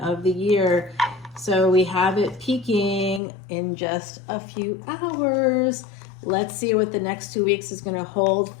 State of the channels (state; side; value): drops out; right; at 3.2 s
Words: the year. So we have it peaking in just a few hours. Let's see what the next 2 weeks is going to hold